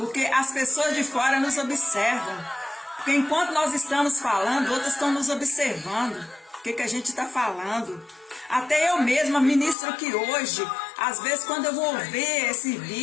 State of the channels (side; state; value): right; drops out; at 9.8 s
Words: as pessoas de fora nos observam. Porque enquanto nós estamos falando, outros estão nos observando. O que a gente está falando? Até eu mesma ministro aqui hoje. Às vezes quando eu vou ouvir esse